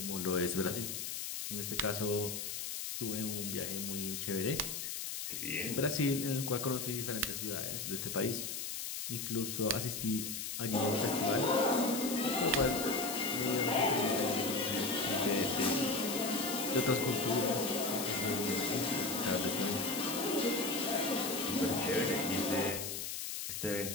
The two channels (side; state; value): left; noise; hiss, 4 dB below the sound